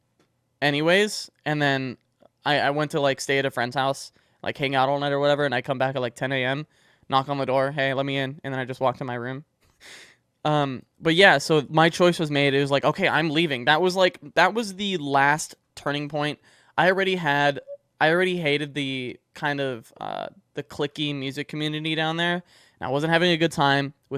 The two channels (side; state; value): both; identical; correlation 1.00